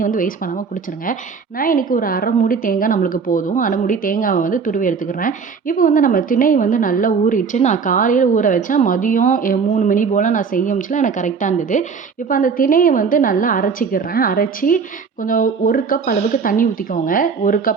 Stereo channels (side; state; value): left; quieter; 5.6 dB